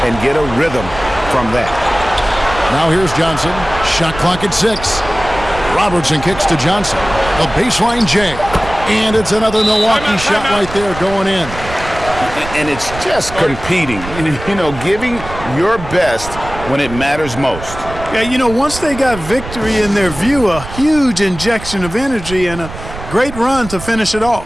and get a rhythm from that. Now here's Johnson. Shot clock at 6. Robertson kicks to Johnson. A baseline J. And it's another Milwaukee shot right there going in. And it's just competing, you know, giving your best when it matters most. Yeah, you know, once they got victory in their view, a huge injection of energy and a great run to finish it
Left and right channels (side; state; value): right; noise; rumble, 12 dB below the sound